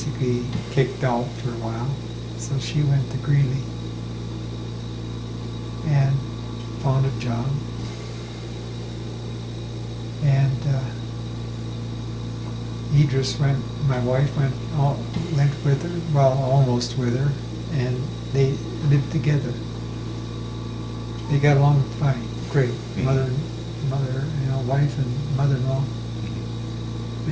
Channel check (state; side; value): identical; both; correlation 1.00